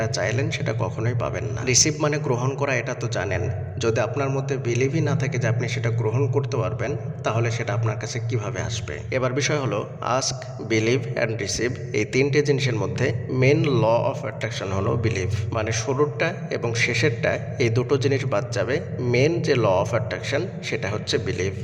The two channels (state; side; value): identical; both; correlation 1.00